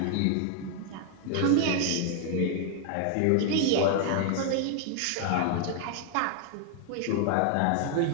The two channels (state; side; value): different; both; correlation 0.00